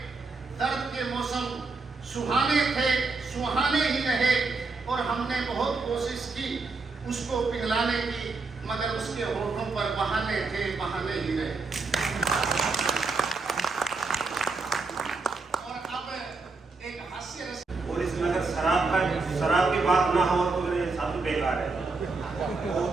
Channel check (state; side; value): quieter; left; 4.0 dB